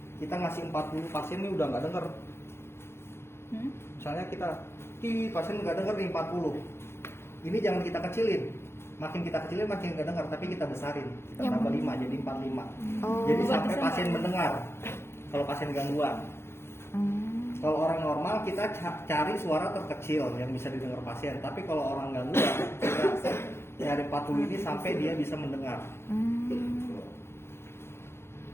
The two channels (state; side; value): late; right; 0.12 ms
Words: kita ngasih 40 pasien ini udah nggak dengar. Misalnya kita pasien nggak dengar nih 40. Ini jangan kita kecilin. Makin kita kecilin makin nggak dengar, tapi kita besarin. Kita Yang tambah 5 jadi 45. Oh. Jadi sampai pasien mendengar. Kalau pasien gangguan. Kalau orang normal kita cari suara terkecil yang bisa didengar pasien. Tapi kalau orang gangguan kita cari 40 ini sampai dia bisa mendengar.